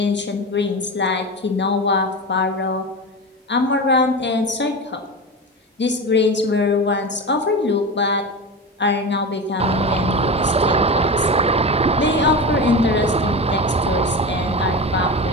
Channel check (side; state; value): both; normal; correlation 0.25